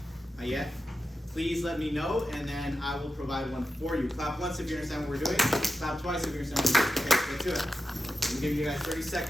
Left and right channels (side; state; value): both; normal; correlation 0.91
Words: not yet. Please let me know, and then I will provide one for you. Clap once if you understand what we're doing. Clap twice if you understand what we're doing. Okay, let's do it. I'm giving you guys 30